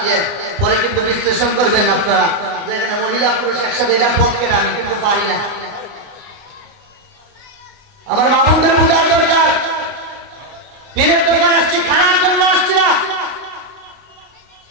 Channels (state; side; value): late; left; 30 ms